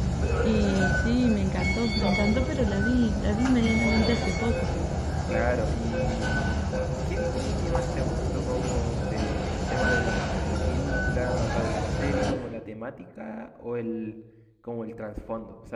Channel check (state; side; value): identical; both; correlation 1.00